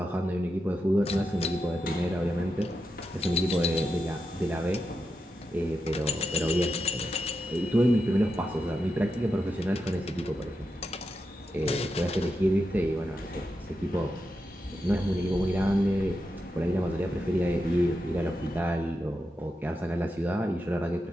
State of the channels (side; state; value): both; normal; correlation 0.87